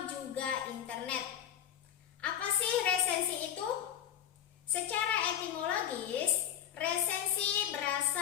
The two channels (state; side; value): quieter; right; 9.9 dB